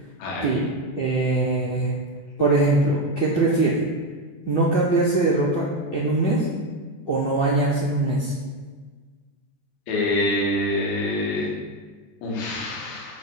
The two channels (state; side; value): late; right; 14 ms